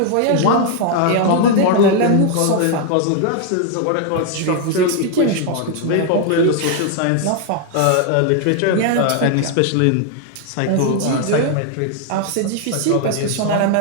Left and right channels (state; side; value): different; both; correlation 0.00